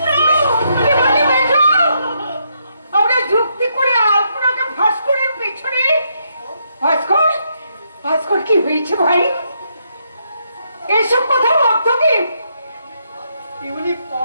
আমরা যুক্তি করে আলপনাকে ভাস্করের পিছনে? ভাস্কর, ভাস্কর কি হয়েছে ভাই? এসব কথা অর্থ কি? এগুলি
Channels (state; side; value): inverted; both; correlation -0.77